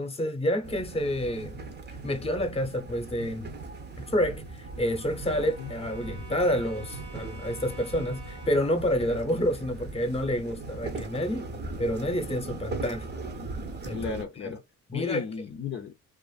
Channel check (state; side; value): normal; both; correlation 0.50